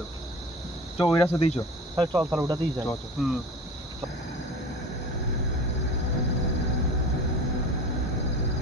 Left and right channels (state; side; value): normal; both; correlation 0.37